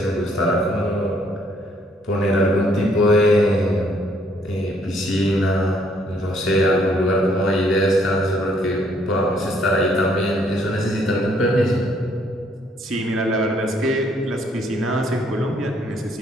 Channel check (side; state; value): both; normal; correlation 0.67